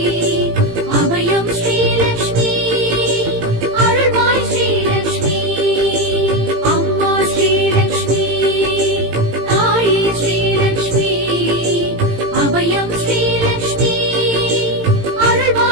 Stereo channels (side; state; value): left; late; 18 ms